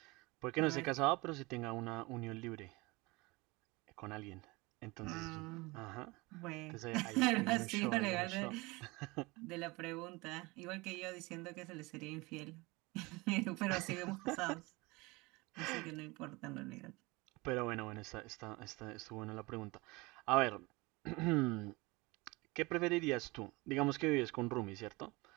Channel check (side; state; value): left; quieter; 24.1 dB